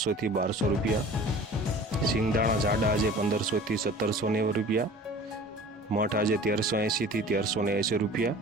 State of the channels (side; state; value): both; normal; correlation 0.43